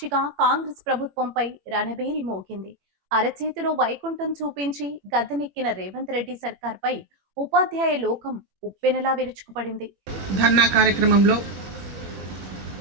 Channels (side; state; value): left; late; 21 ms